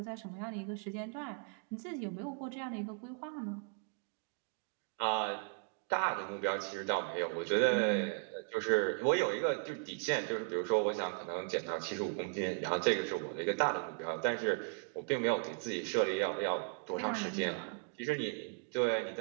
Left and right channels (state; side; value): quieter; left; 38.6 dB